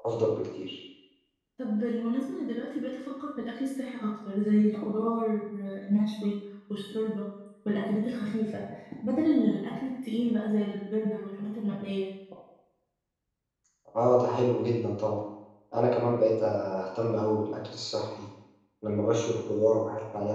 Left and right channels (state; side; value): identical; both; correlation 1.00